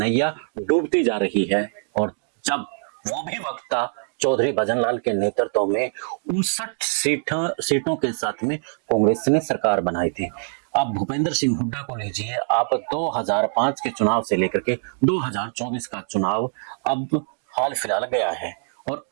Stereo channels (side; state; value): left; silent; digital silence